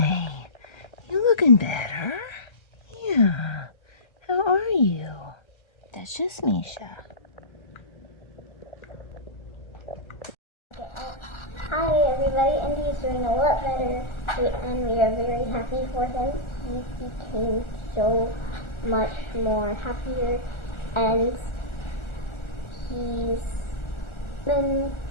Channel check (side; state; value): right; late; 1.4 ms